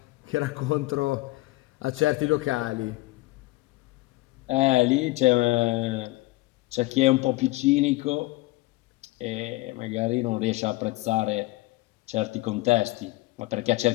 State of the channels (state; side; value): quieter; right; 20.5 dB